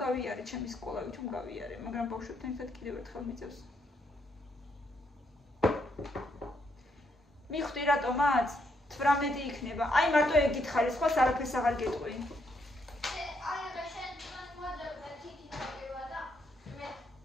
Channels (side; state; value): both; normal; correlation 0.75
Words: გავიარე ჩემი სკოლა, ვითომ გავიარე, მაგრამ ბავშვებთან ერთად კიდევ ერთხელ მიწევს. მიხვდი რატომაც 18 იქნება. აი მარტო ეგ გითხარი, სხვა არაფერს აღარ გეტყვი. აი რა შენ მოძებნა თითი ნაკება და მე